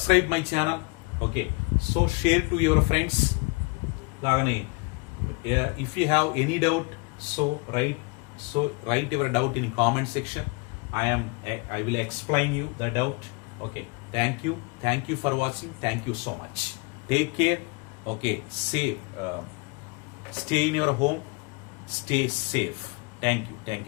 my channel. Okay, so share to your friends. లాగానే if you have any doubt so write your doubt in comment section. I will explain you the doubt. Okay, thank you for watching. Thank you so much. Take care. Okay, safe. Stay in your home. Stay safe. Thank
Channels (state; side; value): quieter; right; 29.4 dB